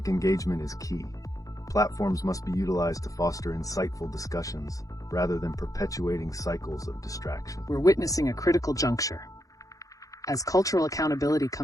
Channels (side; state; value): right; late; 0.17 ms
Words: engagement is key. Platforms must be utilized to foster insightful discussions rather than perpetuating cycles of distraction. We're witnessing a critical juncture. As cultural accountability